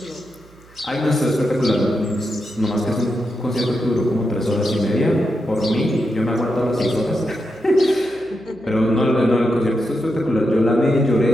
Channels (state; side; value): noise; right; hum, 26 dB below the sound